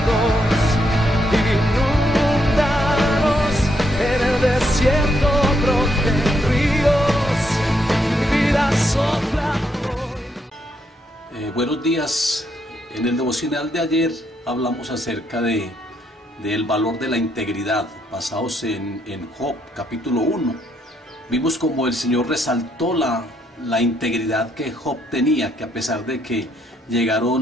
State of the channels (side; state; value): both; normal; correlation 0.75